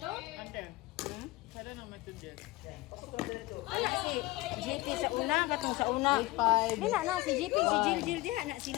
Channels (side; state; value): right; quieter; 20.2 dB